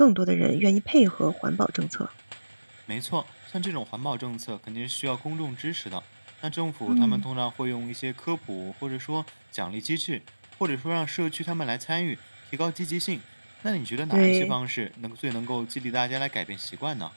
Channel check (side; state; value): both; inverted; correlation -1.00